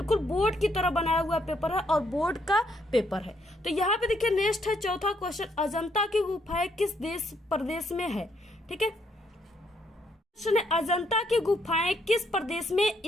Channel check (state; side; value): normal; both; correlation 0.72